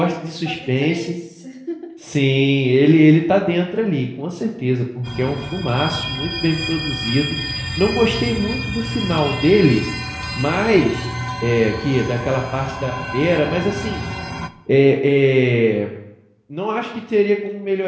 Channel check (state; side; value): identical; both; correlation 1.00